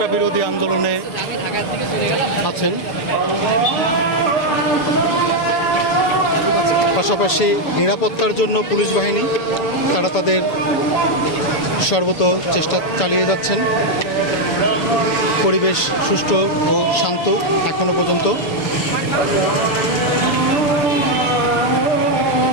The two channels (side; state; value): right; late; 6.9 ms